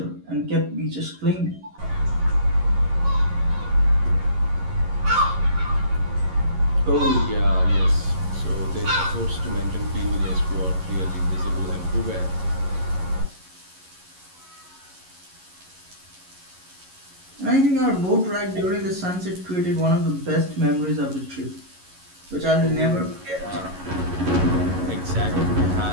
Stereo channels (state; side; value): late; left; 11 ms